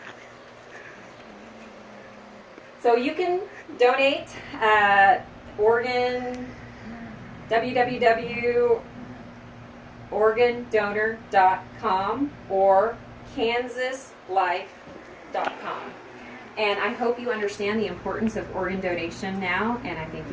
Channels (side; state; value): both; identical; correlation 1.00